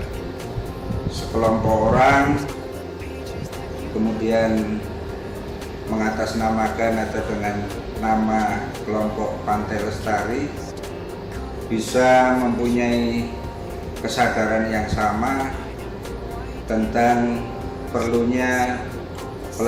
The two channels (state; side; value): identical; both; correlation 1.00